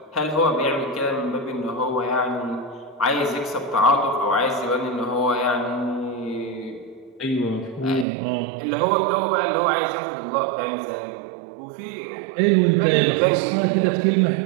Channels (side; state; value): left; drops out; at 8.1 s